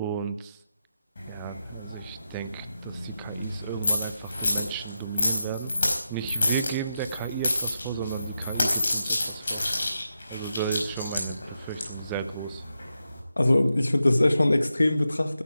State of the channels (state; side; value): inverted; both; correlation -0.87